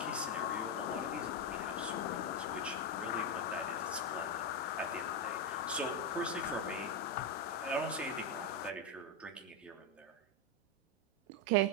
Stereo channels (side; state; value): both; normal; correlation 0.06